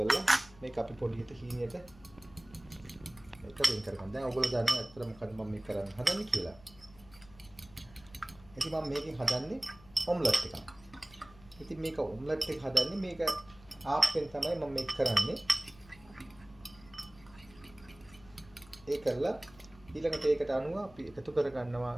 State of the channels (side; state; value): left; noise; hum, 23 dB below the sound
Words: මේක අපි පොඩියට හීනියට මේක වෙන් කරගන්න. දැන් ඔයගොල්ලෝ දන්නවා ඇත්තට මොකද මම මේ කරන්න හදන්නේ කියලා. ඉතින් මම මේකෙන් හදන්නේ ඔම්ලට් එකක්. ඉතින් මේක ඔම්ලට් එක හදන්නේ මේක ආප්පෙන් තමයි මම මේක කරන්නේ. ඒ කරලා ඊළඟට ඒකට අනුව අපි එකතු කර ගන්නවා